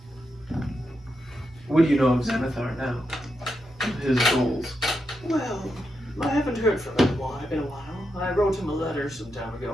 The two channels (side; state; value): both; normal; correlation 0.85